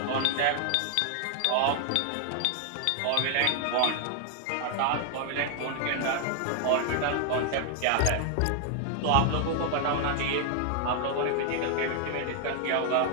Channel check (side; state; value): both; different; correlation 0.00